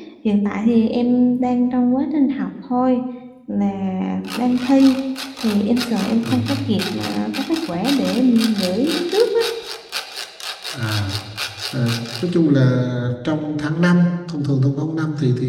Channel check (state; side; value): identical; both; correlation 1.00